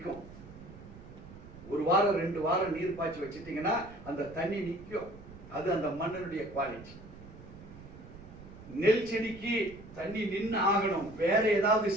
1 வாரம் 2 வாரம் நீர் பாய்ச்சி வச்சிட்டீங்கன்னா அந்த தண்ணி நிற்கும். அது அந்த மண்ணினுடைய குவாலிட்டி. நெல் செடிக்கு தண்ணி நின்று ஆகணும். வேற ஏதாவது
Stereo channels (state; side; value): noise; right; rumble, 17 dB below the sound